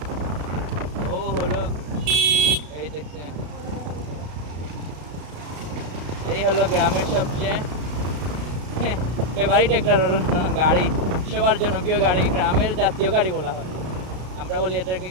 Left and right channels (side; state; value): left; late; 33 ms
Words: ও হলো এই দেখছেন, এই হলো গ্রামের সবচেয়ে ফেভারিট একটা গাড়ি, সবার জনপ্রিয় গাড়ি, গ্রামের জাতীয় গাড়ি বলা হয়। আমরা বলি এটাকে